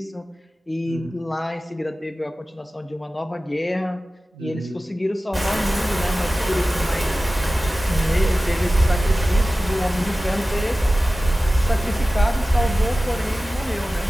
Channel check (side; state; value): both; normal; correlation 0.96